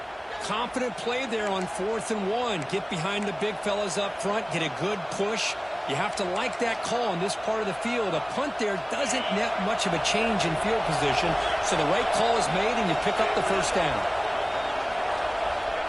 Confident play there on 4th and 1. Get behind the big fellas up front. Get a good push. You have to like that call in this part of the field. A punt there doesn't net much of a change in field position. So the right call is made, and you pick up the first down.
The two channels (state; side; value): identical; both; correlation 1.00